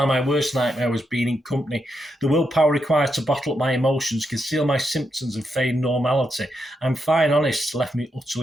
my worst nightmare was being in company. The willpower required to bottle up my emotions, conceal my symptoms and feign normality. I'm fine, honest, left me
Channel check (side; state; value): both; normal; correlation 0.83